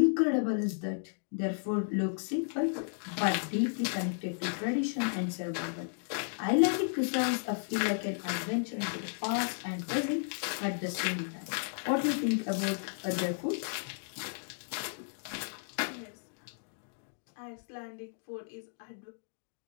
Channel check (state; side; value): silent; right; digital silence